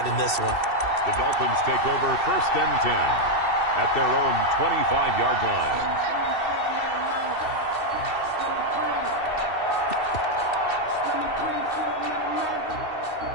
in this one. The Dolphins take over 1st and 10 at their own 25-yard line.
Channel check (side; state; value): right; late; 2.7 ms